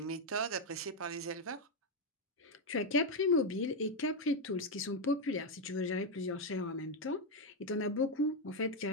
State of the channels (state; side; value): normal; both; correlation 0.03